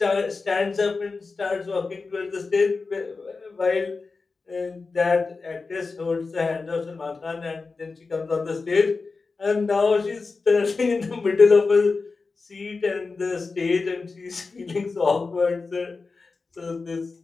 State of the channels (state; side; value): quieter; right; 4.2 dB